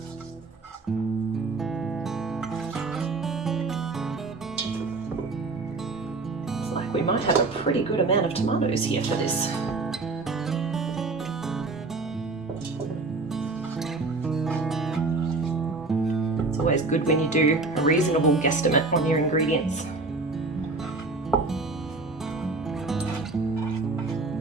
We might have a pretty good amount of tomatoes here for this. It's always good when you do a reasonable guesstimate on your ingredients.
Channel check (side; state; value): left; quieter; 3.6 dB